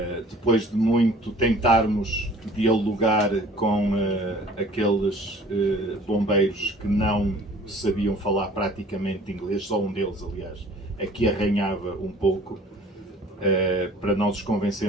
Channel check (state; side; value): normal; both; correlation 0.50